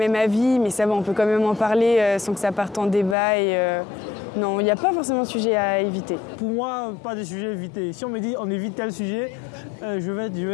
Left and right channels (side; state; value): right; drops out; at 3.2 s